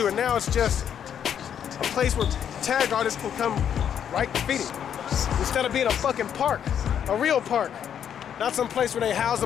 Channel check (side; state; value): right; quieter; 8.8 dB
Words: and now it's just a place where tag artists can come write graffiti instead of being a fucking park, a real park, not some place where they house